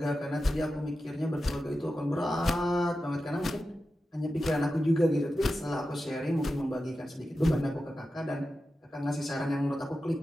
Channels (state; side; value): normal; both; correlation 0.92